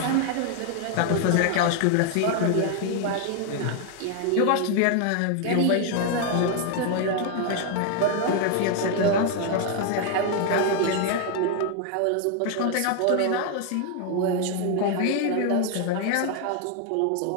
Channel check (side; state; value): both; different; correlation 0.00